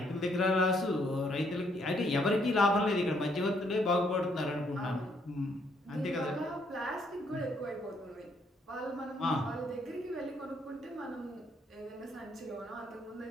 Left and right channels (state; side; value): normal; both; correlation 0.70